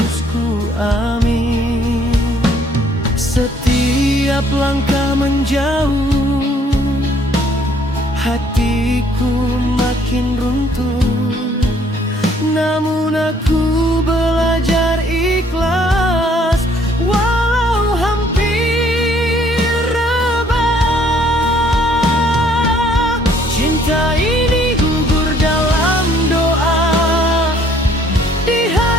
ku amin. Setiap langkah menjauh, hatiku makin runtuh. Namun aku belajar ikhlas, walau hampir rebah. Cinta ini gugur dalam doa, di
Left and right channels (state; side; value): normal; both; correlation 0.62